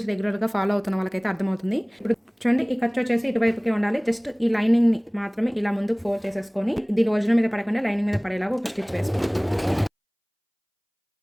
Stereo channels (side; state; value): both; identical; correlation 1.00